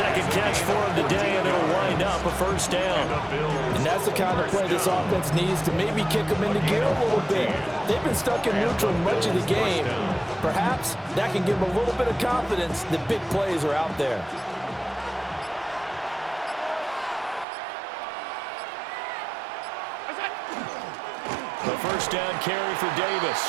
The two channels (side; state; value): left; drops out; at 17.4 s